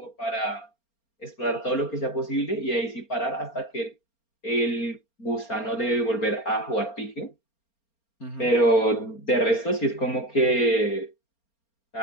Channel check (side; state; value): right; late; 4.3 ms